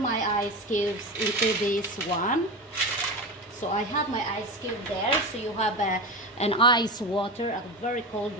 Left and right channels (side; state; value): both; normal; correlation 0.23